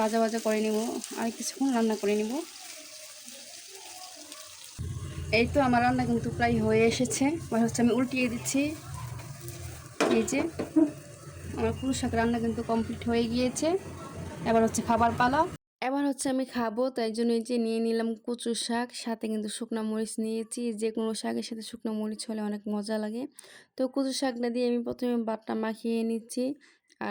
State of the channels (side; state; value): both; identical; correlation 1.00